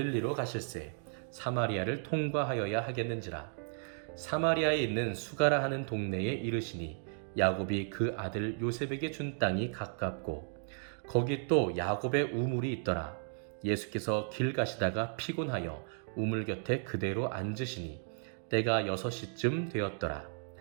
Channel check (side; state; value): left; silent; 55 dB below the other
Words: 가실새 사마리아를 통과하여야 하겠는지라. 사마리아에 있는 수가라 하는 동네에 이르시니 야곱이 그 아들 요셉에게 준 땅이 가깝고 거기 또 야곱의 우물이 있더라. 예수께서 길 가시다가 피곤하여 우물 곁에 그대로 앉으시니 때가 6시쯤 되었더라.